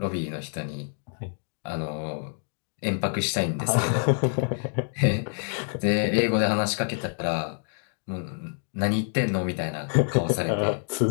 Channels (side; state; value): right; silent; digital silence